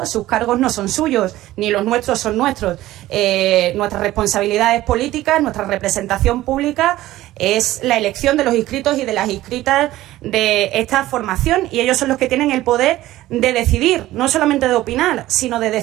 sus cargos no son suyos, ni los nuestros son nuestros. Nuestras responsabilidades políticas, nuestra representación pública es la elección de los inscritos y de las inscritas de esta formación, y ellos son los que tienen el poder de decidir, no solamente de opinar, sino de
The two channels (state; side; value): quieter; left; 15.7 dB